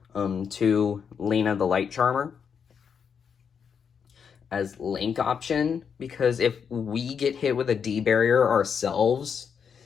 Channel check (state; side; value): quieter; right; 6.9 dB